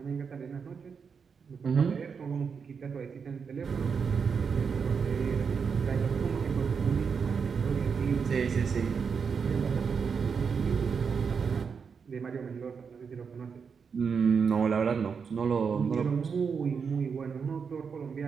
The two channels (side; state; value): left; quieter; 6.0 dB